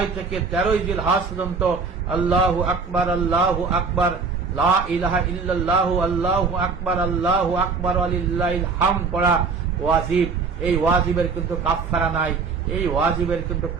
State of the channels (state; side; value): quieter; left; 4.8 dB